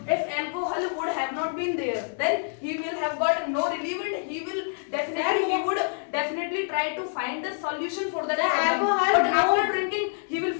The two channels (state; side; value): silent; right; digital silence